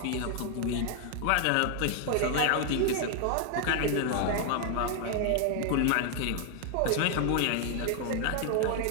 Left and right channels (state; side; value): different; both; correlation 0.00